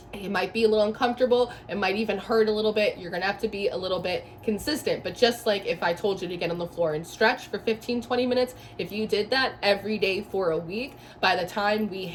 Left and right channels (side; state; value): both; identical; correlation 1.00